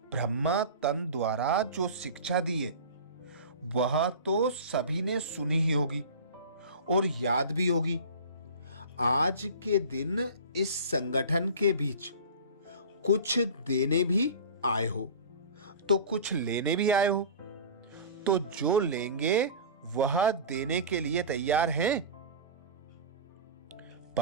ब्रह्मा तन द्वारा जो शिक्षा दी है वह तो सभी ने सुनी ही होगी और याद भी होगी। आज के दिन इस संगठन के बीच कुछ देने भी आए हो तो कुछ लेने भी आए हो। तो जो लेंगे वह देने के लिए तैयार हैं?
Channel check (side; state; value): both; inverted; correlation -0.35